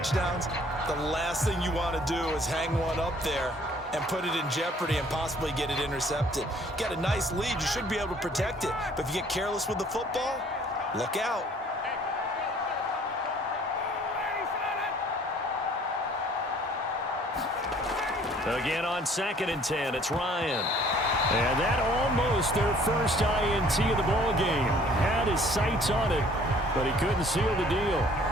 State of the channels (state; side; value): normal; both; correlation 0.57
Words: the last thing you want to do is hang one up there and put it in jeopardy and possibly get it intercepted. Get a nice lead, you should be able to protect it. But if you get careless with the football, look out. Again on 2nd and 10, it's Ryan. And that almost their first INT of the ball game. Had his sights on it, but he couldn't seal the deal.